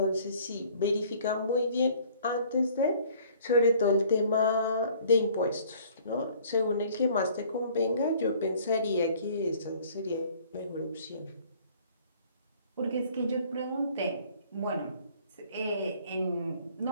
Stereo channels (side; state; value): both; inverted; correlation -0.55